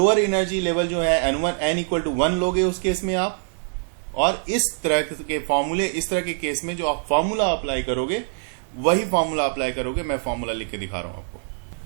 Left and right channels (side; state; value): left; silent; digital silence